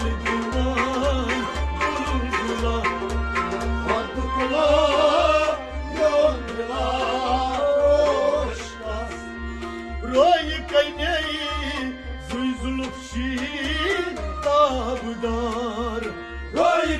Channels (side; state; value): both; identical; correlation 1.00